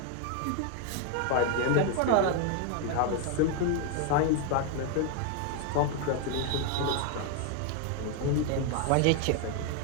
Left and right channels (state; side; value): different; both; correlation 0.01